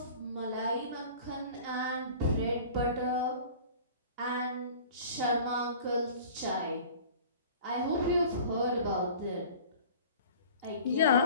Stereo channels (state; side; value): inverted; both; correlation -0.44